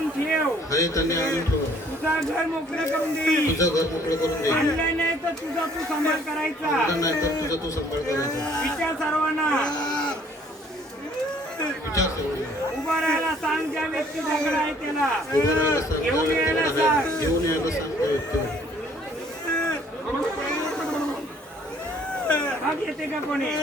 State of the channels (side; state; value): both; normal; correlation 0.59